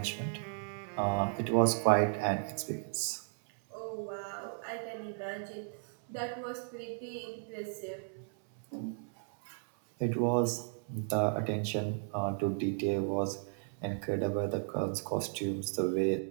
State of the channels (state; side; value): silent; left; 55 dB below the other